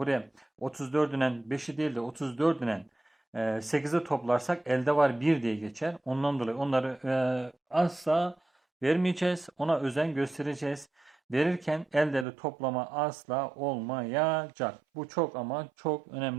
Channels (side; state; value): left; drops out; at 12.2 s